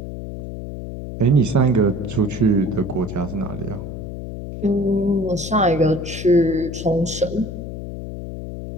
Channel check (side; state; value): left; noise; hum, 8 dB below the sound